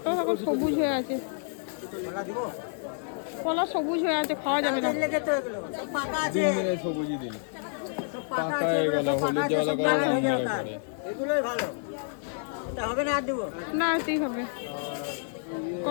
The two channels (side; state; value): right; silent; digital silence